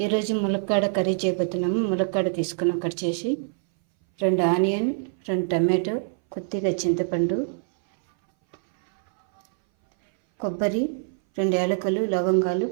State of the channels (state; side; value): silent; left; 59 dB below the other